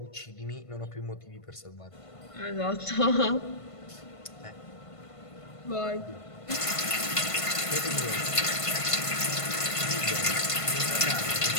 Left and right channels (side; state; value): right; late; 1.5 ms